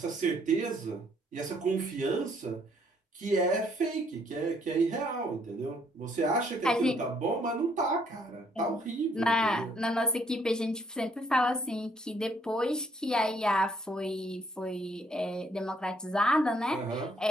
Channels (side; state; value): both; normal; correlation 0.67